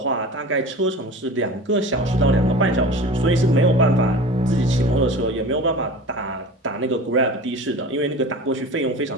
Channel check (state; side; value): normal; both; correlation 0.36